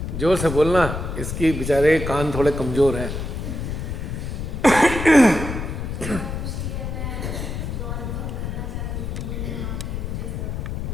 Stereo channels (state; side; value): noise; left; rumble, 4 dB below the sound